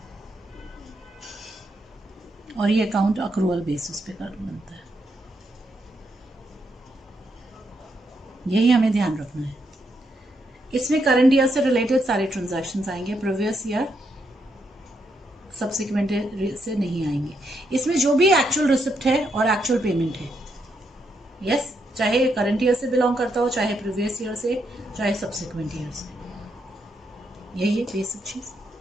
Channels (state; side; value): normal; both; correlation 0.79